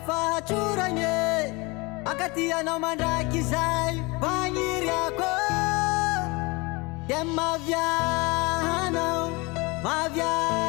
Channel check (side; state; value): right; quieter; 25.9 dB